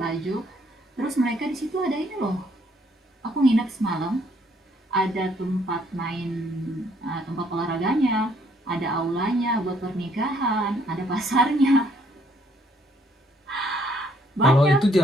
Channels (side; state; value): both; normal; correlation 0.67